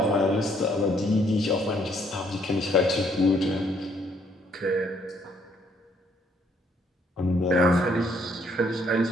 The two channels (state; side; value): normal; both; correlation 0.67